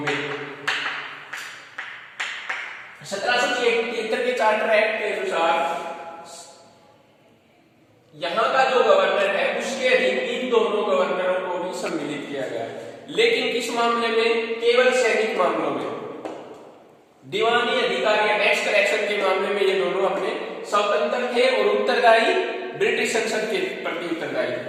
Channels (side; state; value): both; identical; correlation 1.00